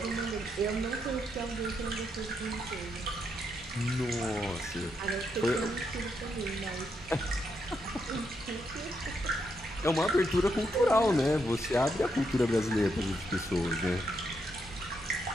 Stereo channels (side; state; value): both; normal; correlation 0.79